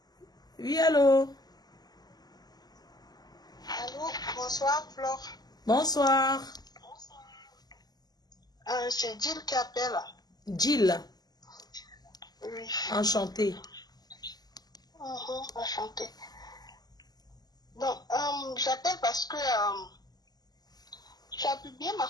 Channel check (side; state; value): right; late; 0.19 ms